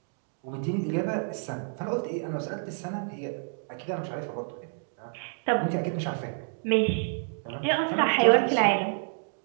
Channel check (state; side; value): silent; left; 57 dB below the other